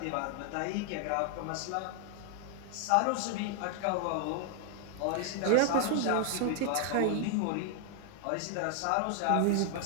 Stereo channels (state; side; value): different; both; correlation 0.00